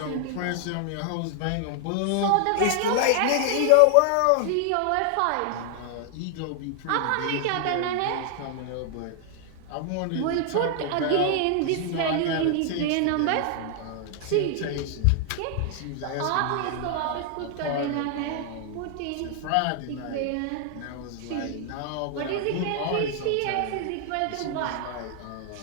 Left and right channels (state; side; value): different; both; correlation 0.00